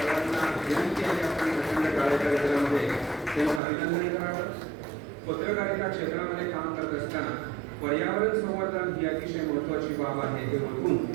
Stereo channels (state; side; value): drops out; left; at 3.6 s